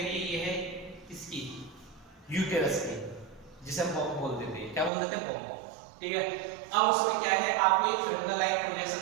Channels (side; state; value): left; drops out; at 4.9 s